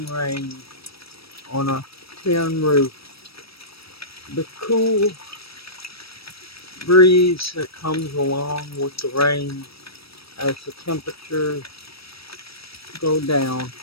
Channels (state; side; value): late; right; 0.76 ms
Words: rain on a tin roof. The cool breeze that comes along with the rain as the temperatures go down